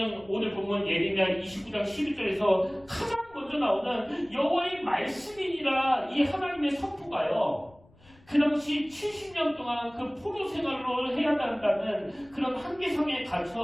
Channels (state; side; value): noise; left; rumble, 27 dB below the sound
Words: 오늘 보면 예레미야 29장 11절에서 가장 먼저 나오는 여호와의 말씀이니라 이 하나님의 선포가요. 그 당시 70년 동안 그 포로 생활로 해야 한다는 그런 한계상에